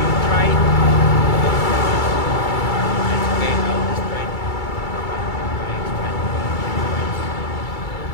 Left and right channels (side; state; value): right; late; 2.3 ms